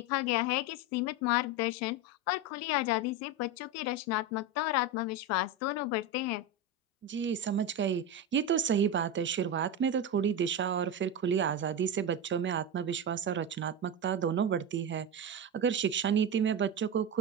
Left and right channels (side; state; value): both; normal; correlation 0.17